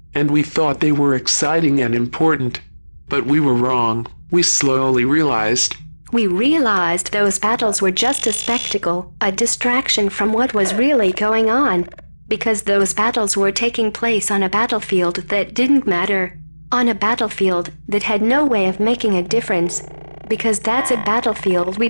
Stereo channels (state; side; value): inverted; both; correlation -1.00